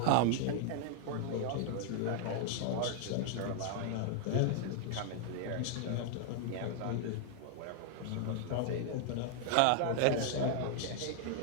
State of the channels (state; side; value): different; both; correlation -0.01